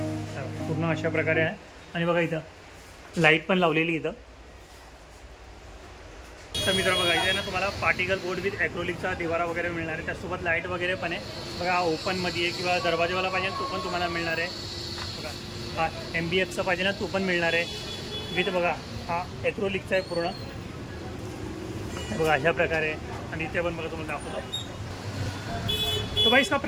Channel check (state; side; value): identical; both; correlation 1.00